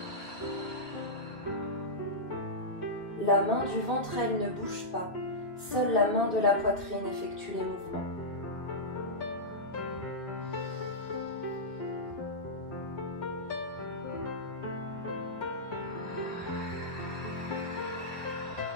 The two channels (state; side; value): late; right; 2.9 ms